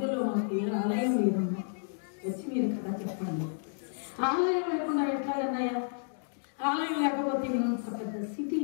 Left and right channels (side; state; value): right; silent; digital silence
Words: మాకు ఏ ఆలయం లేదమ్మా, వచ్చి మీరు కదా చెప్పండి. ఆలయం లేకుండా ఎట్లాగన్నాయా? ఆలయం లేకపోతే ఇంత పెద్ద